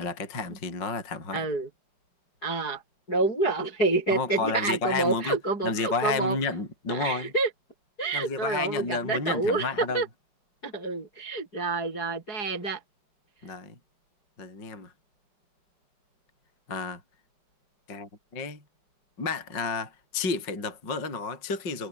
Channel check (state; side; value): late; right; 5.4 ms